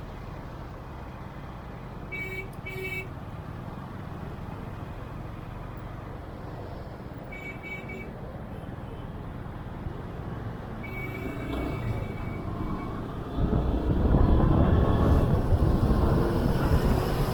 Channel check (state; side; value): identical; both; correlation 1.00